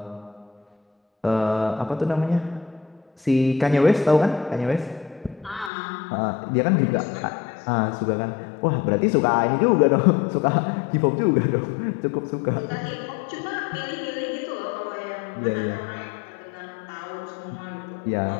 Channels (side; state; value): right; drops out; at 5.7 s